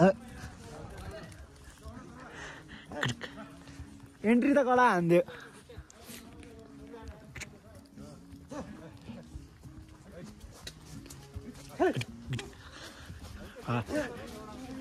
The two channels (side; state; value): both; identical; correlation 1.00